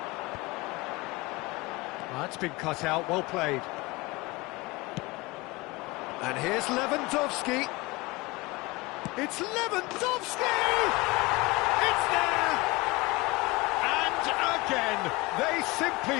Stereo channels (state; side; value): quieter; right; 23.1 dB